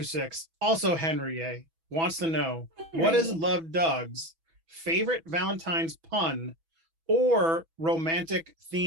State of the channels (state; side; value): late; left; 6.1 ms